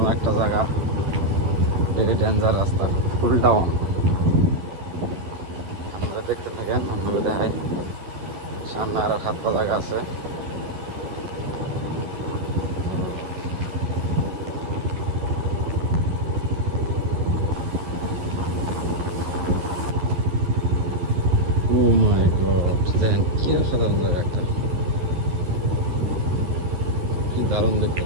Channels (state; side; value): late; left; 11 ms